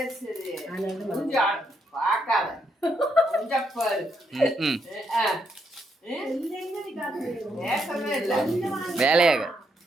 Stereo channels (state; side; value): normal; both; correlation 0.77